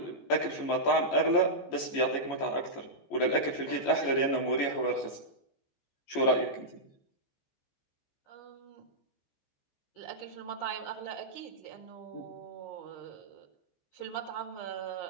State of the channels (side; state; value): right; late; 14 ms